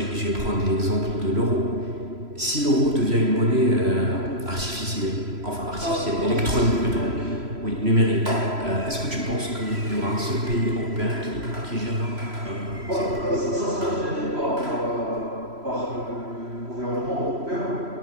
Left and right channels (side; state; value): left; late; 3.0 ms